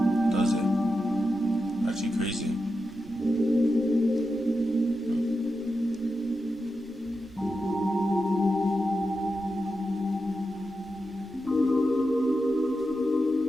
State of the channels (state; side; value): normal; both; correlation 0.89